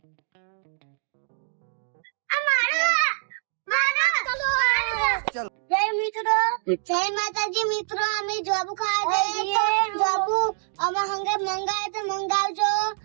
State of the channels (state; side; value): silent; left; digital silence